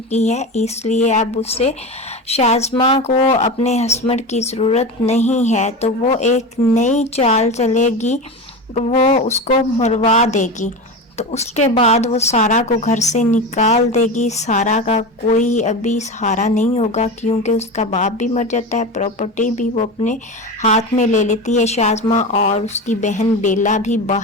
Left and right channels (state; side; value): normal; both; correlation 0.25